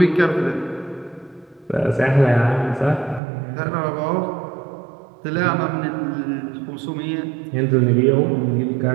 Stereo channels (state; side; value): drops out; left; at 3.2 s